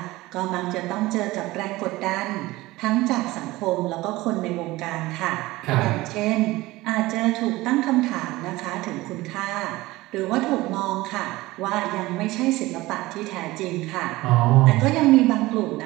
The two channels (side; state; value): left; quieter; 19.2 dB